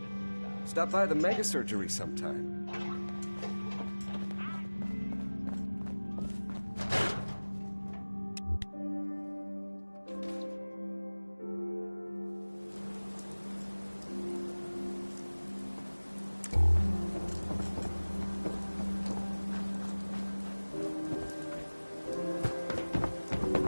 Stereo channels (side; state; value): both; inverted; correlation -1.00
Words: Stop by the mega surgery sometime.